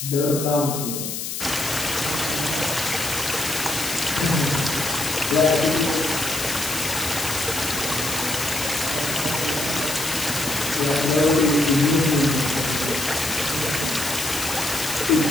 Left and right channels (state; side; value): noise; left; hiss, 5 dB below the sound